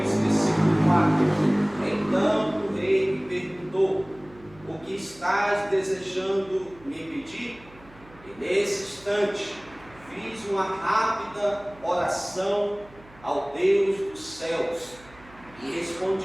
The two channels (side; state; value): right; noise; hum, 24 dB below the sound